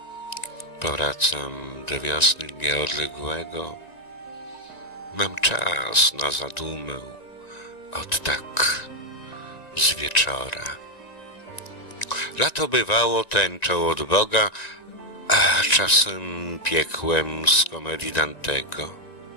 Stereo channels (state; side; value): late; right; 1.9 ms